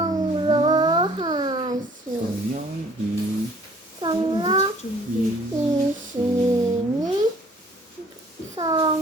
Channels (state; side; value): normal; both; correlation 0.56